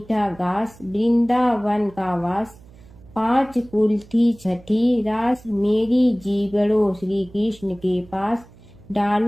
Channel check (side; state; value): right; noise; hum, 23 dB below the sound